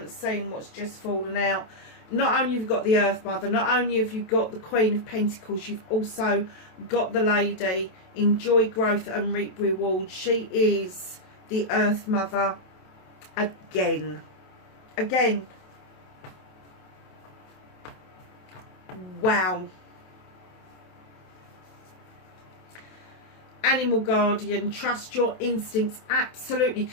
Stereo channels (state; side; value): late; right; 27 ms